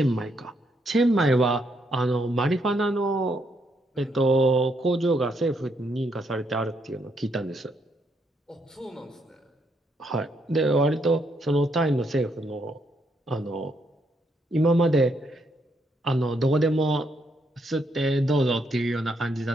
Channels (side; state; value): both; normal; correlation 0.75